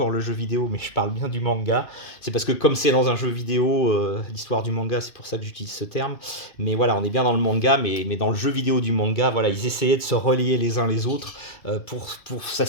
le jeu vidéo, mais je parle bien du manga. C'est parce que comme c'est dans un jeu vidéo, l'histoire du manga, c'est pour ça que j'utilise ce terme. Mais voilà, on est bien dans le manga, mais dans le jeu vidéo du manga, voilà, ils essayaient de se relayer les uns les autres pour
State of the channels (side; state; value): right; late; 2.5 ms